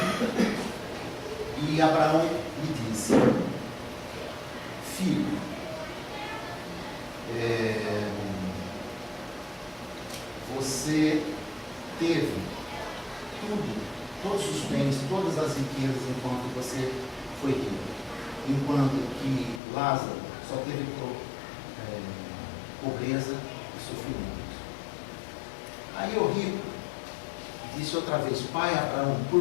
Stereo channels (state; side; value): drops out; right; at 19.6 s